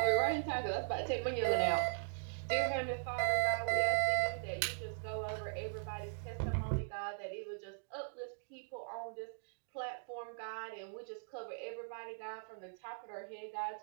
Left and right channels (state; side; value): silent; left; digital silence